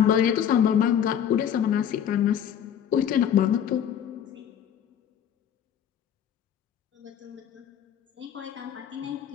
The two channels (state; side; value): quieter; right; 9.1 dB